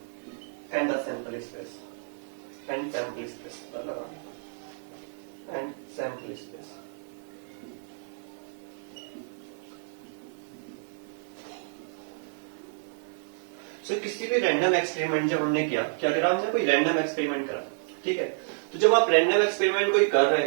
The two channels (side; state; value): left; silent; 58 dB below the other